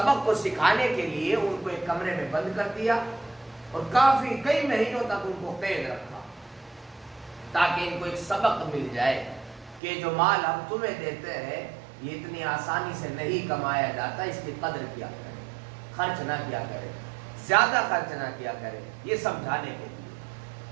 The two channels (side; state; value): left; drops out; at 9.8 s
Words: کو سکھانے کے لیے ان کو ایک کمرے میں بند کر دیا اور کئی مہینوں تک ان کو قید رکھا تاکہ ان کو ایک سبق مل جائے کہ جو مال ہم تمہیں دیتے ہیں یہ اتنی آسانی سے نہیں کمایا جاتا، اس کی قدر کیا کرے، خرچ نہ کیا کرے، زیادہ خرچ نہ کیا کرے، یہ سمجھانے کے لیے.